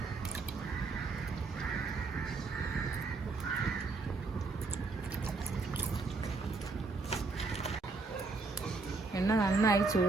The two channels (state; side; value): quieter; left; 3.9 dB